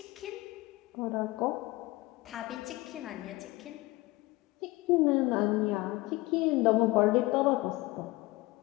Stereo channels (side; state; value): right; quieter; 20.5 dB